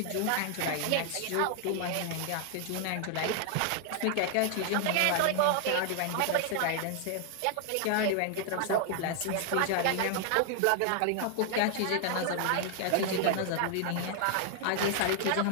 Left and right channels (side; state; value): both; different; correlation 0.00